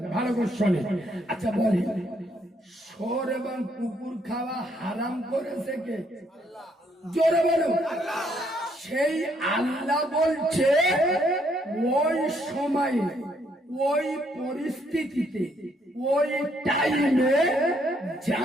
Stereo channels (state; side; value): normal; both; correlation 0.70